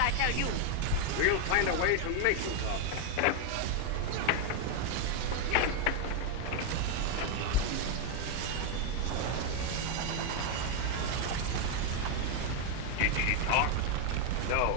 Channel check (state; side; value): different; both; correlation 0.01